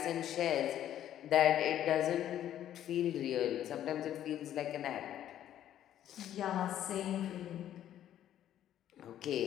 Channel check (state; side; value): quieter; right; 11.4 dB